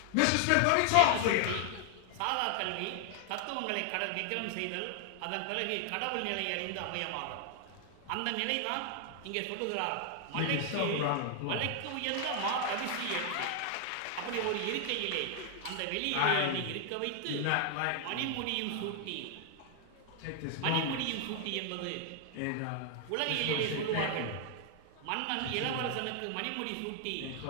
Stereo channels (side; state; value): both; different; correlation 0.00